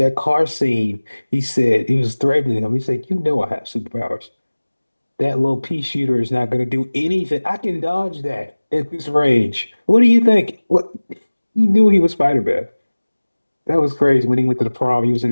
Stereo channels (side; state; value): both; inverted; correlation -1.00